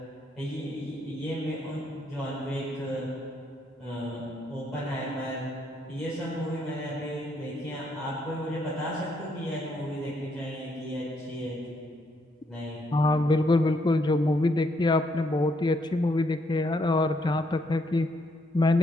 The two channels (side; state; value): both; normal; correlation 0.73